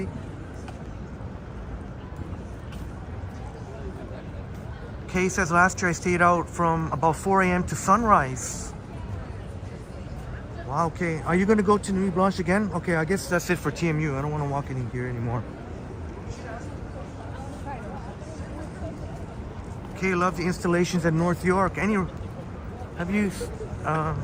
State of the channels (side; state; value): both; identical; correlation 1.00